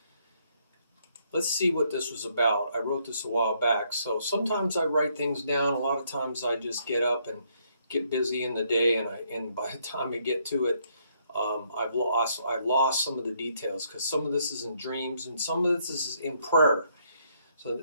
let's see what this was about. I wrote this a while back. So sometimes I write things down. A lot of times I just get up and get busy in the day, and by the time I get to it, I've lost some of the details, because some of this is in dreams and some of this is in prayer. So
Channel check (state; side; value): inverted; both; correlation -0.71